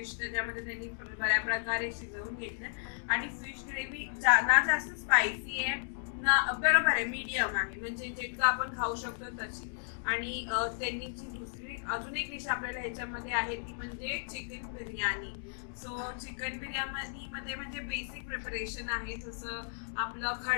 त्याच्यामध्ये त्यांनी बऱ्या प्रकारे शिजवून घेतलं. आणि फिश ग्रेव्ही ना जास्त स्पायसी आहे ना, बरोबर आहे, मीडियम आहे, म्हणजे जितकं आपण खाऊ शकतो तशी. आणि त्यांनी जी दुसरी अजून एक डिश आपल्याला ह्याच्यामध्ये आहे ती म्हणजे chicken biryani. So chicken biryani मध्ये म्हणजे बेसिक प्रिपरेशन आहे, जसं आपलं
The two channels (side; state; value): right; silent; digital silence